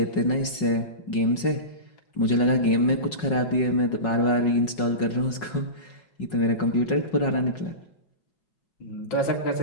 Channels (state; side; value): late; right; 5.4 ms